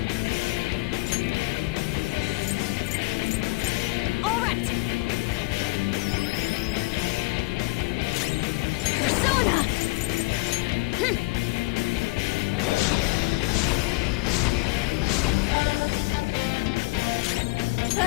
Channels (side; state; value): right; quieter; 24.5 dB